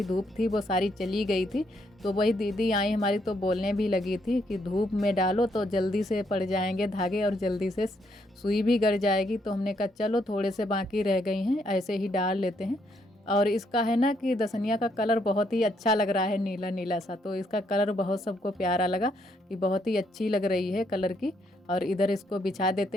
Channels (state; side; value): normal; both; correlation 0.74